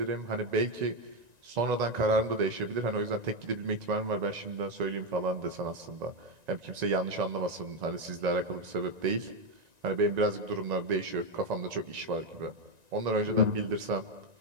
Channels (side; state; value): left; late; 1.9 ms